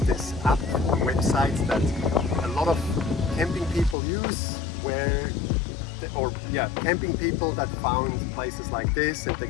this app website that a lot of camping people use, camping people that found places like this, and they're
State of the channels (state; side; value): drops out; right; at 4.0 s